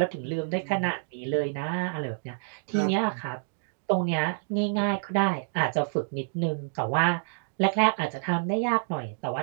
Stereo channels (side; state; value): left; silent; digital silence